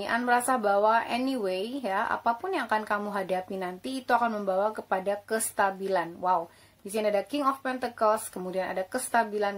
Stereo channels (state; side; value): identical; both; correlation 1.00